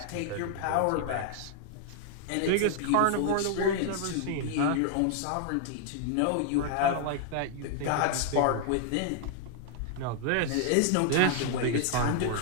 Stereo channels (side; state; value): both; different; correlation 0.00